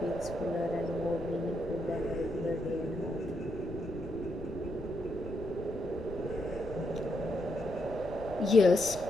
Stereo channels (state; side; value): noise; left; rumble, 12 dB below the sound